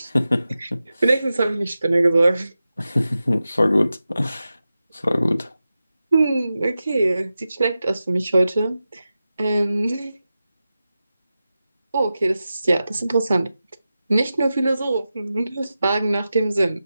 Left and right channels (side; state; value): both; inverted; correlation -0.93